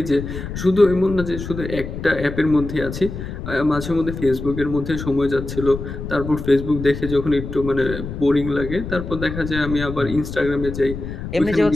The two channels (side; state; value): left; noise; rumble, 8 dB below the sound